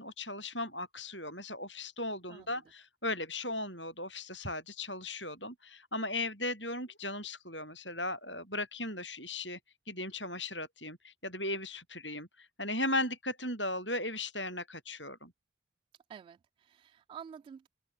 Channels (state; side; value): normal; both; correlation -0.16